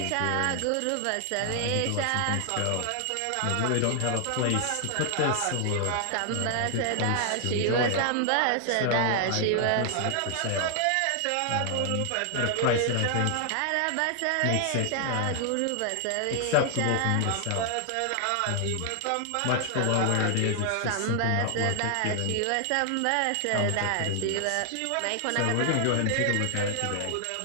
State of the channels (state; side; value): different; both; correlation 0.00